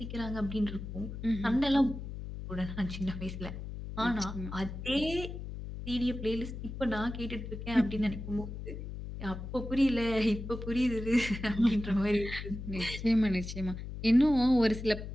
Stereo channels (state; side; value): noise; left; hum, 8 dB below the sound